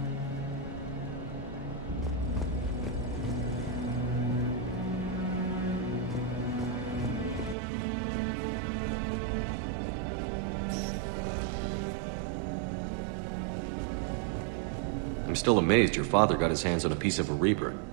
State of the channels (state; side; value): drops out; left; at 7.6 s